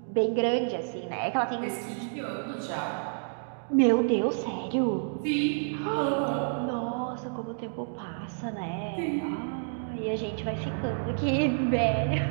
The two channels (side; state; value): left; silent; digital silence